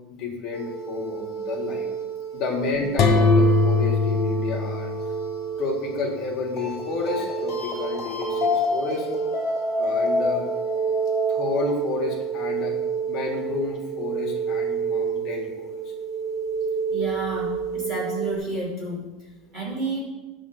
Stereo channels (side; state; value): both; normal; correlation 0.40